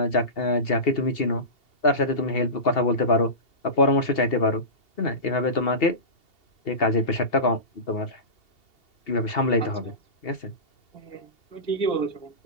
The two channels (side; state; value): right; late; 2.7 ms